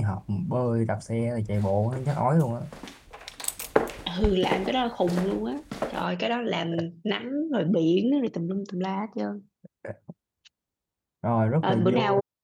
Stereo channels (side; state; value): both; identical; correlation 1.00